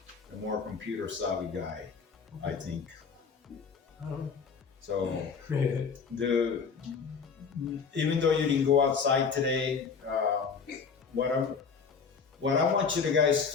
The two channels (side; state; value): right; quieter; 5.7 dB